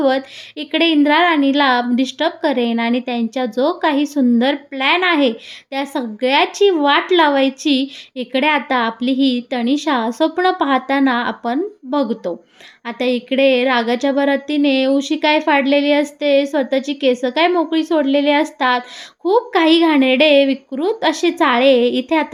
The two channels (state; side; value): identical; both; correlation 1.00